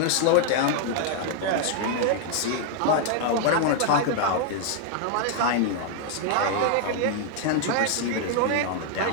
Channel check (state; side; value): different; both; correlation 0.00